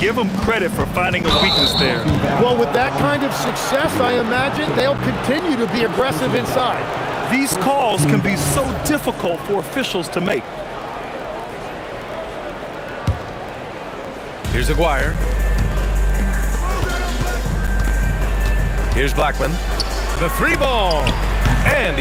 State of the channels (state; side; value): identical; both; correlation 1.00